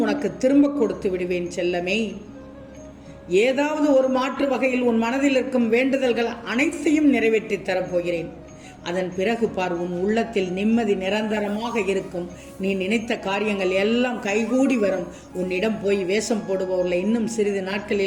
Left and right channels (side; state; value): both; identical; correlation 1.00